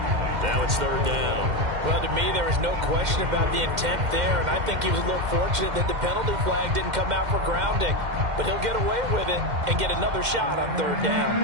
Now it's 3rd down. Well, to me, there is no question about the intent there, and I think he was a little fortunate that the penalty flag didn't come out for grounding. But he'll get away with it and get another shot on 3rd down.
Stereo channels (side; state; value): left; late; 2.1 ms